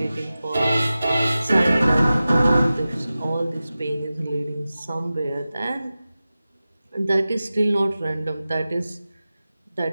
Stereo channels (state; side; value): inverted; both; correlation -0.95